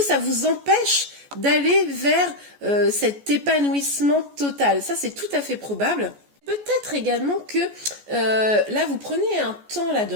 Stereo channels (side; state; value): left; late; 14 ms